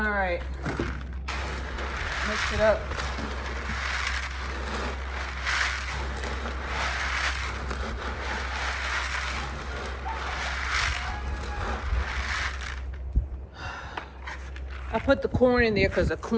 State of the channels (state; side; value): identical; both; correlation 1.00